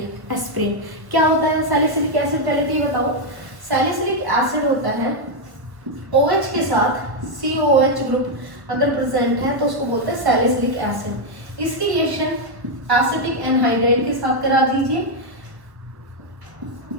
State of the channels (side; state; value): left; late; 1.0 ms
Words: एस्प्रिन क्या होता है, सैलिसिलिक एसिड, पहले तो ये बताओ, सैलिसिलिक एसिड होता है OH के साथ COH ग्रुप अगर प्रेजेंट है तो उसको बोलते हैं सैलिसिलिक एसिड। इसकी रिएक्शन एसिटिक एनहाइड्राइड के साथ करा दीजिए।